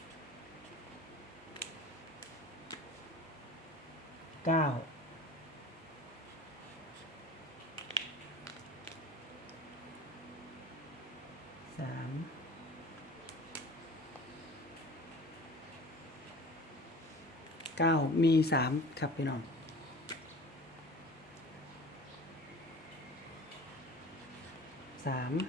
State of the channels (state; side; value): normal; both; correlation 0.40